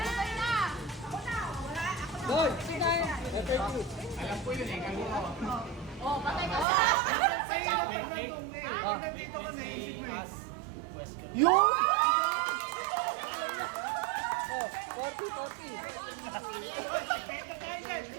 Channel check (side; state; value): left; drops out; at 6.7 s